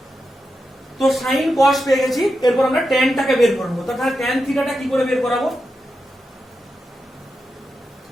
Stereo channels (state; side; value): normal; both; correlation 0.88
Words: তো sin cos পেয়ে গেছি, এরপর আমরা tan টাকে বের করব। তাহলে tan থিটা টা কি করে বের করাবো?